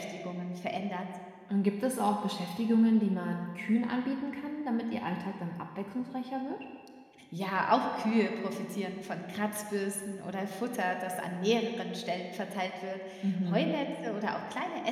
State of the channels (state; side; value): identical; both; correlation 1.00